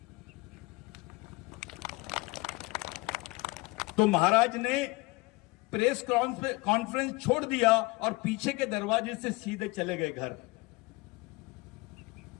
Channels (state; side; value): quieter; right; 24.3 dB